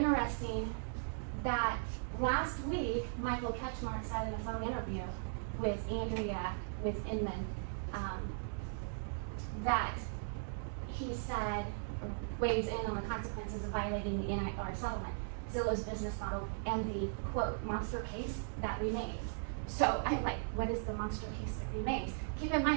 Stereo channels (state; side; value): silent; left; digital silence